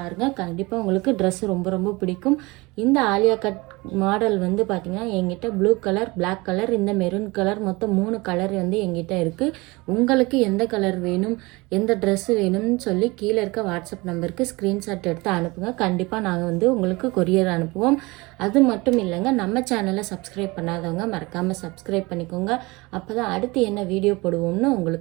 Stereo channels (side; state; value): left; quieter; 23.8 dB